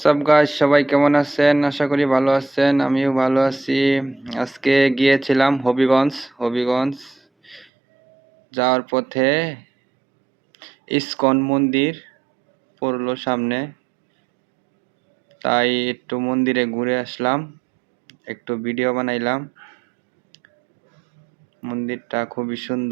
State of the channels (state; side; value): drops out; left; at 7.7 s